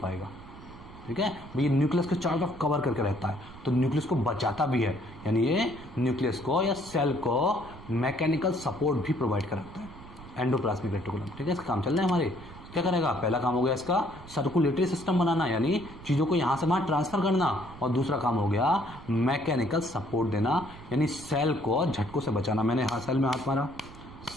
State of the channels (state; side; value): noise; right; rumble, 17 dB below the sound